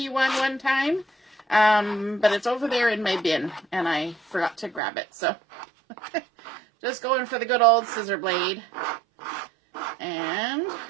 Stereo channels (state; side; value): drops out; left; at 4.8 s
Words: one time, but it's over there in my bin, and I forgot to grab it, so just going for the good old scissor blade. And